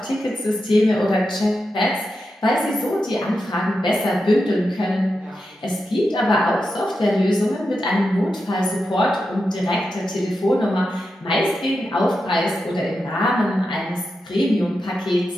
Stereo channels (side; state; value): both; normal; correlation 0.88